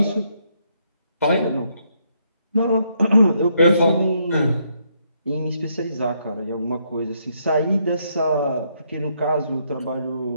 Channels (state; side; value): inverted; both; correlation -0.75